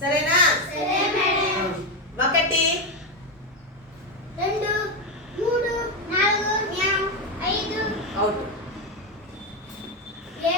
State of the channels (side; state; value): both; normal; correlation 0.09